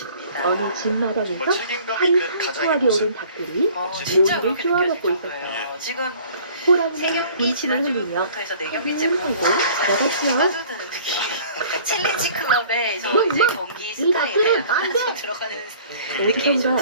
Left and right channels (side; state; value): both; inverted; correlation -0.51